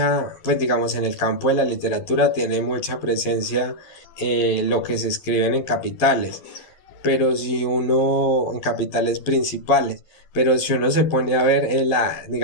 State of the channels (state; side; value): late; right; 12 ms